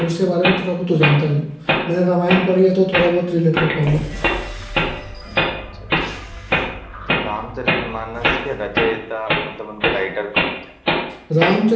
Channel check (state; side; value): identical; both; correlation 1.00